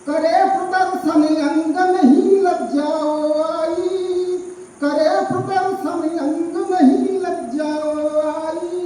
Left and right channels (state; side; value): identical; both; correlation 1.00